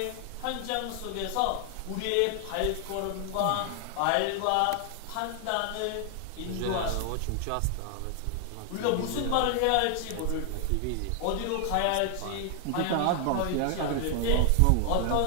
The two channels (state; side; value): different; both; correlation 0.00